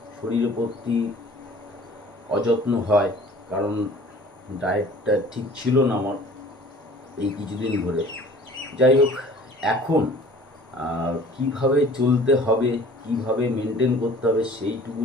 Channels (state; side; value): normal; both; correlation 0.48